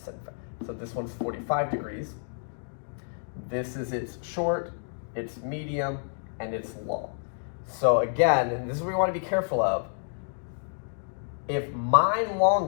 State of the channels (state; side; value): silent; right; digital silence